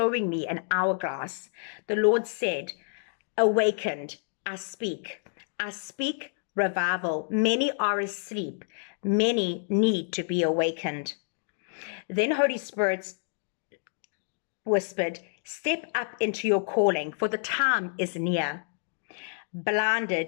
me an hourglass?" The Lord said, "Awakened, I speak. I speak revival. Many are asleep. Many need to be awakened." Then Holy Spirit whispered, "Step up into your calling, for the time is near."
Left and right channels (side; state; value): right; silent; digital silence